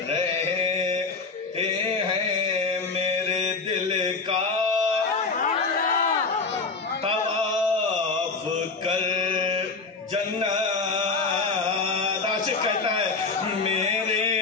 हैं। मेरे दिल का तवाफ कर जन्नत, आशिक कहता है मेरे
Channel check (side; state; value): right; quieter; 4.2 dB